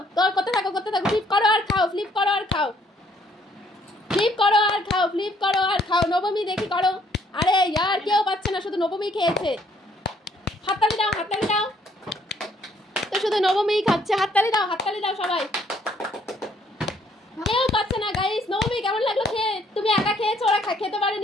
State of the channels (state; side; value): normal; both; correlation 0.66